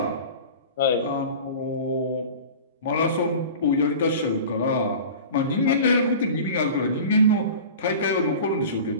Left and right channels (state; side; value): inverted; both; correlation -0.37